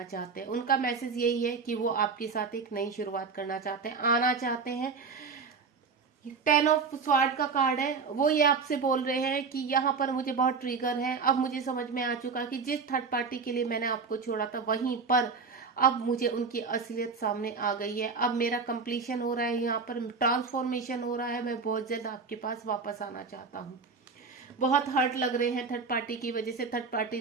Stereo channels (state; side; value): quieter; left; 5.0 dB